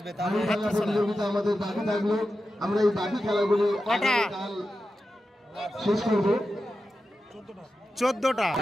প্রতিযোগিতা আমাদের বাকি থাকলো, আমরা এই বাকি খেলাগুলি শেষ করবো। 14টা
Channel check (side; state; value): both; normal; correlation 0.91